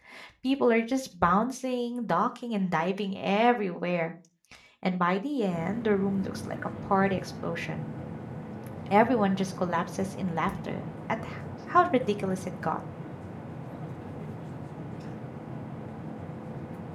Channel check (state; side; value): identical; both; correlation 1.00